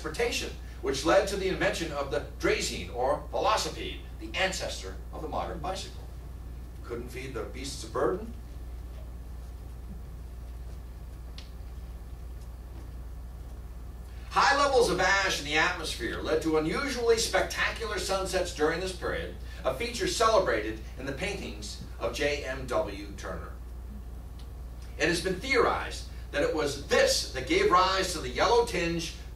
which led to the invention of the Draisine, or velocipede, the ancestor of the modern bicycle. Couldn't feed the beasts of burden? High levels of ash in the atmosphere led to unusually spectacular sunsets during this period, a feature celebrated in the paintings of J.M.W. Turner. It has been theorized that it was this that gave rise to the yellow tinge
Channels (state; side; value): identical; both; correlation 1.00